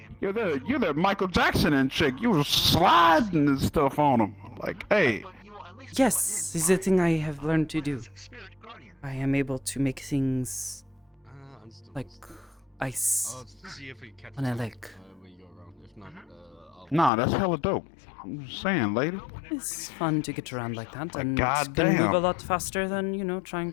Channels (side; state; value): right; drops out; at 17.1 s